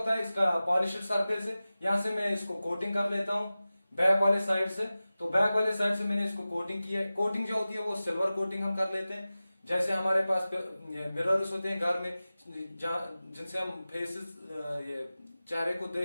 है, इसका पॉलिश्ड सरफेस है, यहां से मैं इसको कोटिंग कर लेता हूं बैक वाले साइड से। तो बैक वाले साइड से मैंने इसको कोटिंग की है। कोटिंग जो होती है वो सिल्वर कोटिंग हम कर लेते हैं। जैसे हमारे पास मिरर्स होते हैं घर में, जिनसे हम फेसेस, ये चेहरे को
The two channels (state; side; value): inverted; both; correlation -0.96